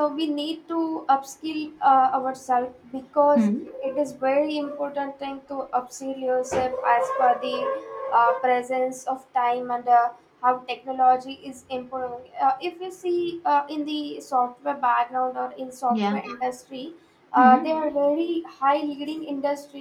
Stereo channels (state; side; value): identical; both; correlation 1.00